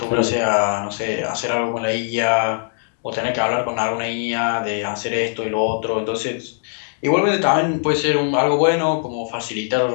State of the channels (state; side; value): silent; right; digital silence